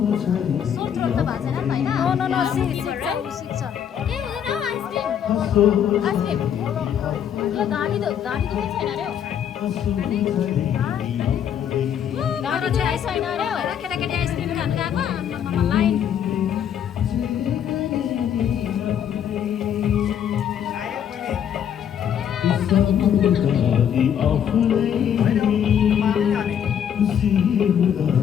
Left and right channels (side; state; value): right; quieter; 9.0 dB